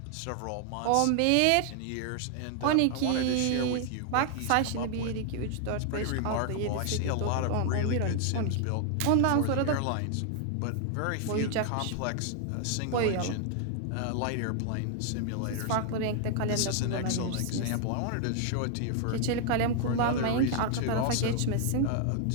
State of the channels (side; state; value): both; different; correlation 0.00